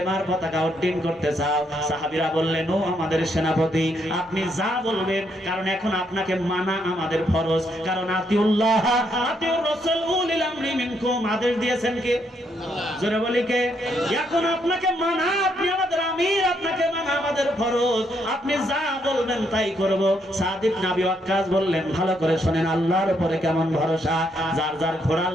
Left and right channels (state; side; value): normal; both; correlation 0.75